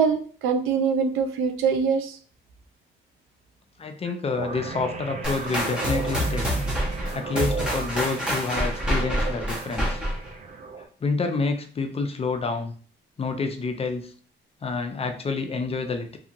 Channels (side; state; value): both; normal; correlation 0.52